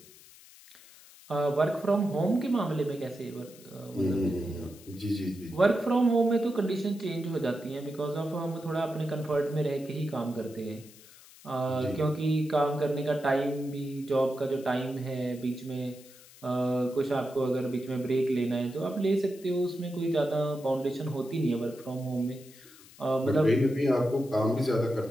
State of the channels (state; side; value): noise; left; hiss, 22 dB below the sound